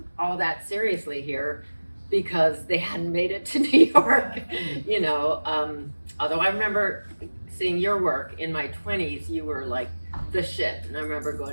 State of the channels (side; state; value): both; inverted; correlation -1.00